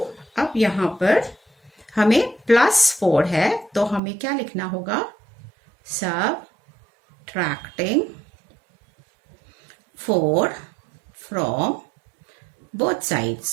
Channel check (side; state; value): left; drops out; at 4.0 s